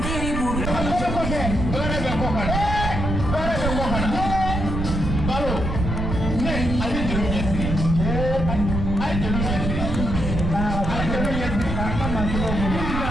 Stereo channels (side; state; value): right; noise; rumble, 2 dB below the sound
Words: Kɔfɛ kɔfɛ. Baara bɛ kɔ kana. Baara bɛ kɔ kana. Balo. Ne a bɛ jeliw ɲɛsiri. A ye jeliw ɲɛsiri. A ye jeliw ɲɛsiri. K'a ka masɔrɔ bolo.